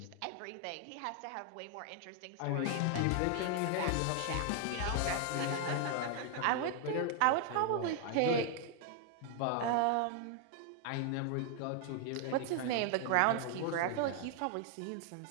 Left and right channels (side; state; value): both; different; correlation 0.00